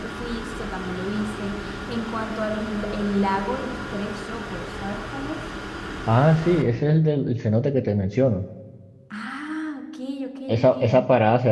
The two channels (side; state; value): both; identical; correlation 1.00